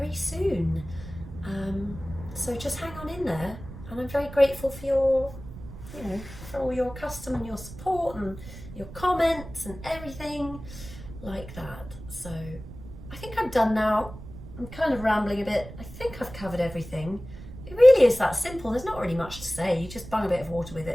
soon. So just hang on in there, and I'm very grateful for your, you know, for all your custom and your support and your comments and everything like that. So I think I'm done now. I'm kind of rambling a bit. I think I've covered everything. It really is that simple. There's not really much to say. You just bung a bit of water with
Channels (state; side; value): noise; right; rumble, 14 dB below the sound